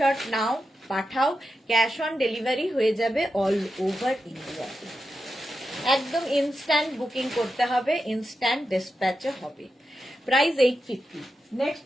নাও পাঠাও, ক্যাশ অন ডেলিভারি হয়ে যাবে অল ওভার ইন্ডিয়াতে। একদম ইনস্ট্যান্ট বুকিং করতে হবে, ইনস্ট্যান্ট ডিসপ্যাচও হবে। প্রাইস 850। নেক্সট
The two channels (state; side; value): normal; both; correlation 0.89